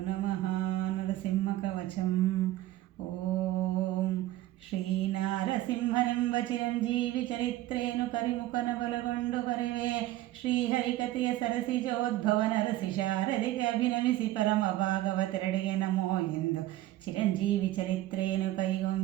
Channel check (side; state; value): left; quieter; 15.3 dB